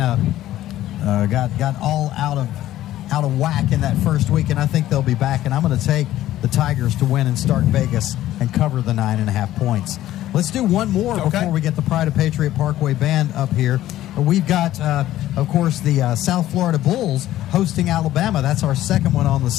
of got all out of whack in that first week, and I think they'll be back. And I'm going to take the Tigers to win and Start Vegas and cover the 9.5 points. Let's do one more before we get the Pride of Patriot Parkway Band up here. We've got, of course, the South Florida Bulls hosting Alabama. That's our second one on the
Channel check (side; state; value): right; quieter; 13.9 dB